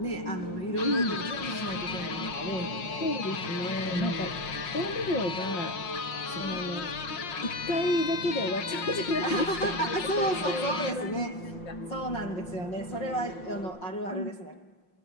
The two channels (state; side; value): late; right; 5.6 ms